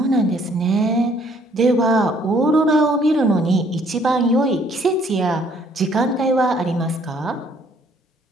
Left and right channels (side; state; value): both; normal; correlation 0.63